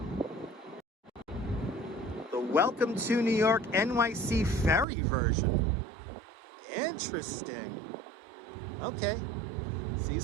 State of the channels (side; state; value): left; drops out; at 4.9 s